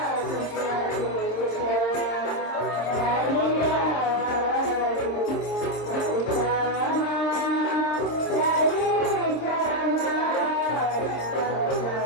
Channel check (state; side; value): late; right; 26 ms